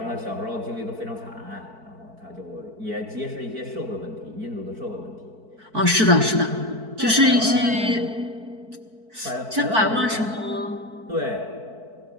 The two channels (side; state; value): left; late; 4.5 ms